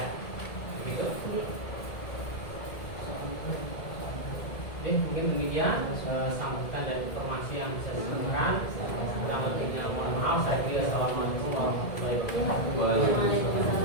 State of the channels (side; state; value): right; late; 2.1 ms